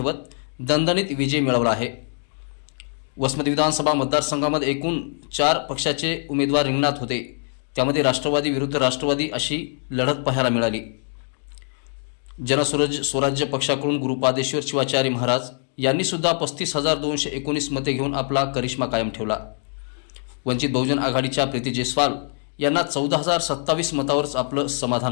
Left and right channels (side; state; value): right; silent; 62 dB below the other